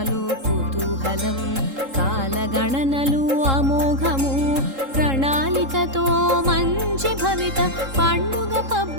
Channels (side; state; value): left; late; 3.7 ms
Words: కుతూహలం కాలగణనలు అమోఘము ప్రణాళికతో మంచి భవిత పండుగ